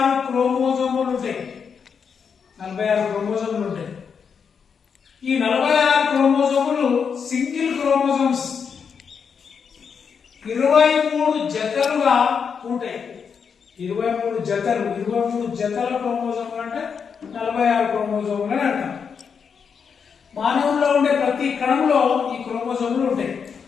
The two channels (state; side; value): quieter; right; 6.5 dB